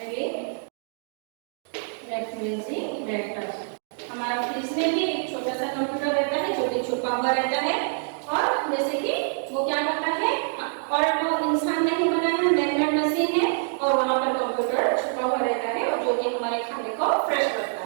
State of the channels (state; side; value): silent; left; 61 dB below the other